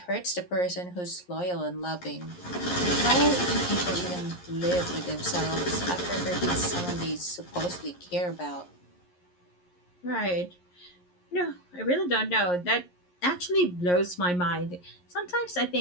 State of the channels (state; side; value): late; right; 11 ms